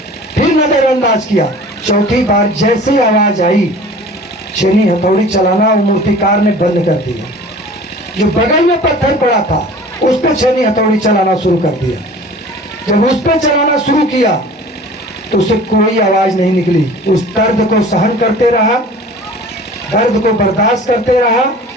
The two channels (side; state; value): both; normal; correlation 0.44